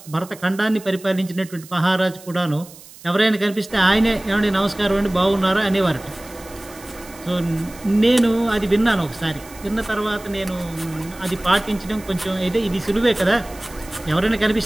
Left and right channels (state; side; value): noise; right; hiss, 20 dB below the sound